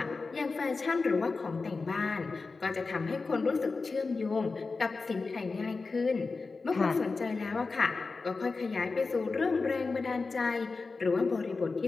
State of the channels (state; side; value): quieter; right; 4.1 dB